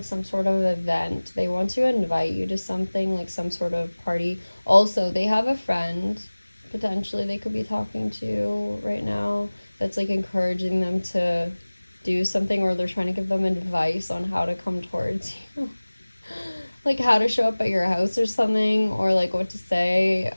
some sort of event. They want to invite you to something, like some sort of party. Also, they have a friend, potentially, they could be talking to right now, that's like encouraging them to do something, or they're trying to give them advice on how to come towards you. Like how to show up at your house or something, or like what to say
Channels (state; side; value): inverted; both; correlation -1.00